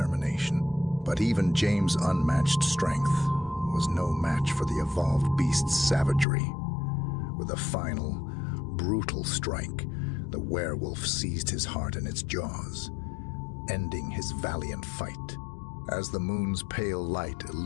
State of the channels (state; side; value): drops out; right; at 6.2 s